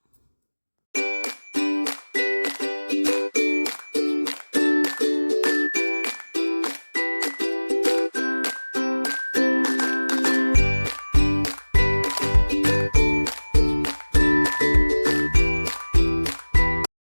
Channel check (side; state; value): both; inverted; correlation -1.00